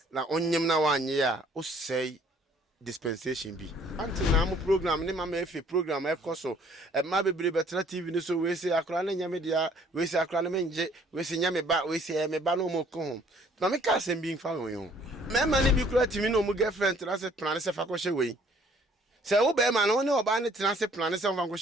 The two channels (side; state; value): both; normal; correlation 0.59